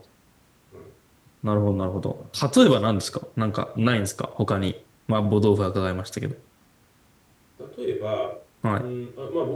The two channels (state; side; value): identical; both; correlation 1.00